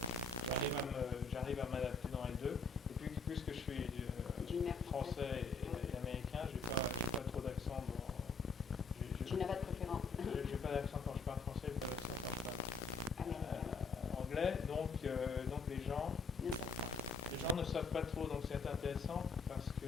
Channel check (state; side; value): quieter; right; 4.2 dB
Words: J'arrive à m'adapter dans les deux. Et puis, puisque je suis français pas trop, donc c'est intéressant parce que